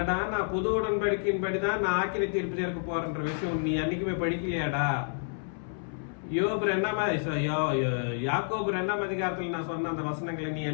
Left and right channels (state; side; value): silent; right; 58 dB below the other